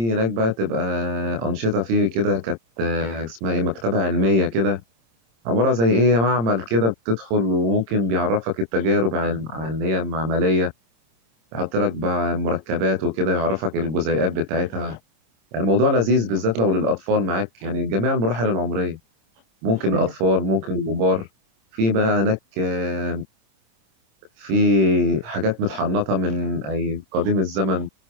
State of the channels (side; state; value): left; late; 26 ms